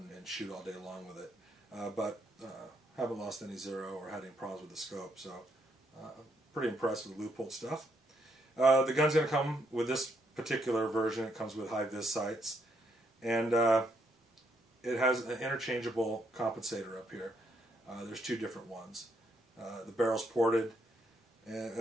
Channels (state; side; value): normal; both; correlation 0.74